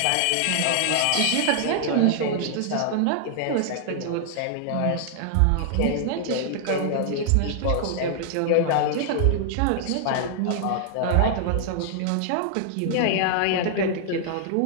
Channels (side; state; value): both; different; correlation -0.01